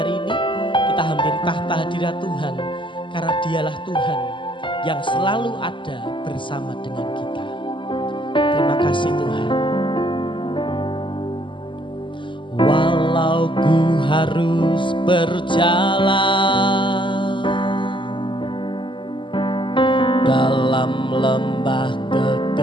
ini. Kita hampiri tahta hadirat Tuhan karena Dialah Tuhan yang selalu ada bersama dengan kita. Terima kasih Tuhan. Walau ku harus berjalan dalam lembah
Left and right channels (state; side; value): late; right; 0.24 ms